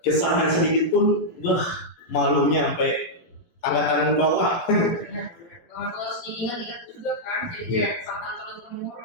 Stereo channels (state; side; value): late; right; 17 ms